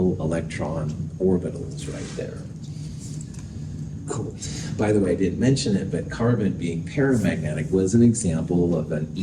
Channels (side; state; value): both; identical; correlation 1.00